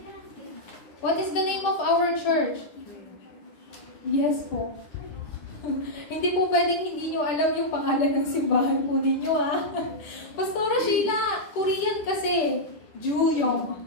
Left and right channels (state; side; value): late; right; 10 ms